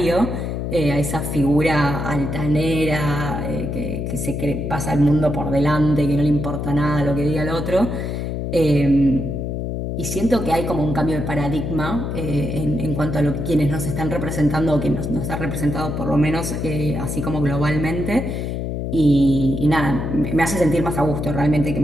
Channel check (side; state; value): left; noise; hum, 3 dB below the sound